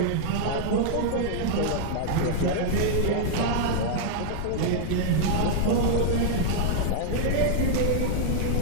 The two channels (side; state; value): both; different; correlation -0.01